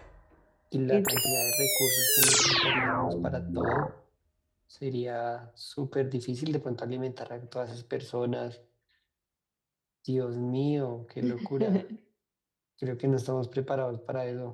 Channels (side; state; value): both; identical; correlation 1.00